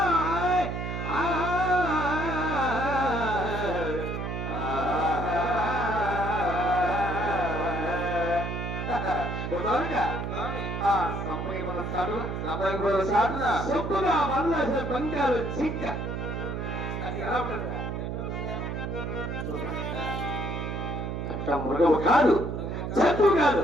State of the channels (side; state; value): right; noise; hum, 4 dB below the sound